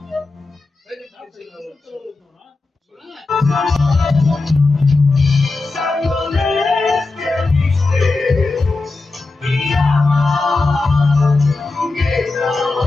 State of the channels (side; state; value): right; quieter; 3.5 dB